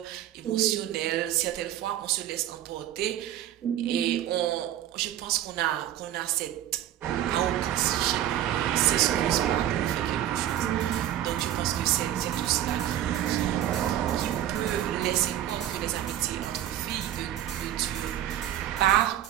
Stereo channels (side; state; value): left; quieter; 12.0 dB